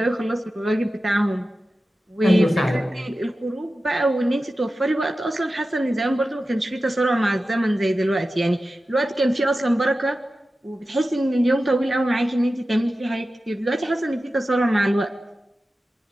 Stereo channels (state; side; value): normal; both; correlation 0.94